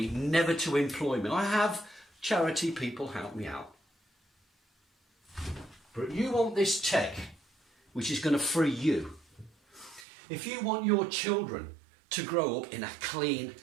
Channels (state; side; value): drops out; left; at 10.1 s